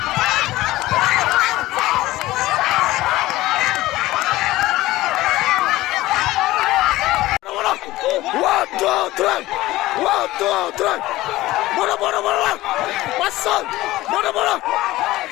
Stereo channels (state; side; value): quieter; right; 17.4 dB